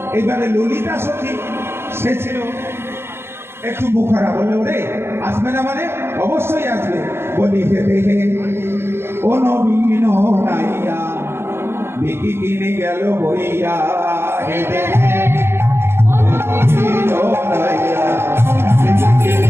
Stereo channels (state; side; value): late; left; 0.12 ms